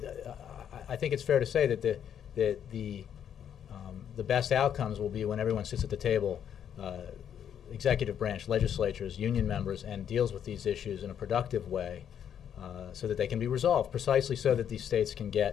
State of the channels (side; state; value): right; quieter; 9.0 dB